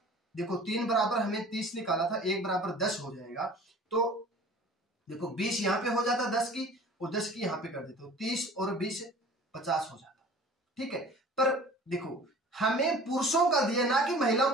देखो 3 बराबर हमें 30 निकाला था, 1 बराबर 10 हो जाएगा, तो देखो 20 यहाँ पे हो जाता 10 की, और 10 की यहाँ पे कर देते हो, 30 और 20 50 हो जाता। ठीक है, पर देखो हमें पुरुषों का दिया ना कि महिलाओं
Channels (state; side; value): normal; both; correlation 0.45